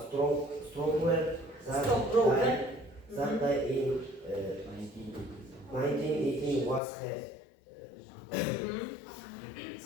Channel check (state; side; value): drops out; right; at 6.8 s